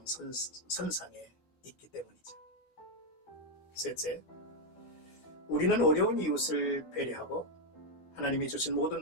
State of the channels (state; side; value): late; right; 12 ms